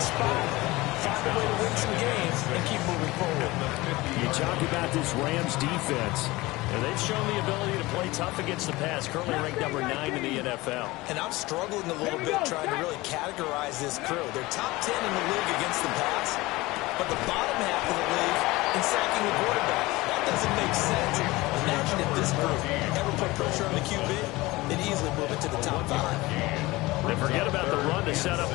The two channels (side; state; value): right; quieter; 20.6 dB